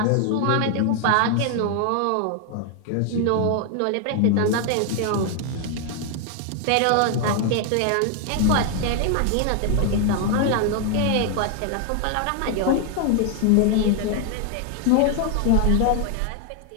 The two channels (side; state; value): both; different; correlation 0.00